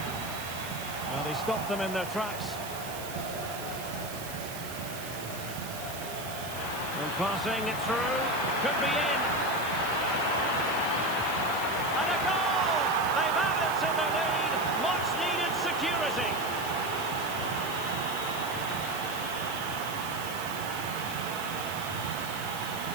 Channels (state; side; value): noise; right; hiss, 11 dB below the sound